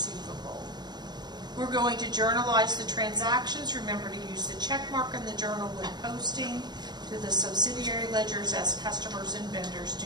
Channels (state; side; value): late; left; 0.20 ms